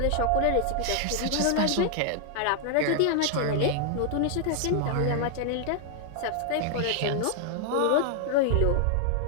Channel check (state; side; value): different; both; correlation 0.00